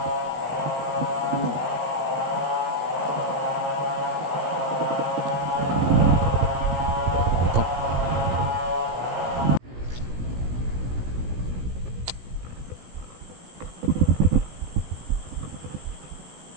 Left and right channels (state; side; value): late; left; 17 ms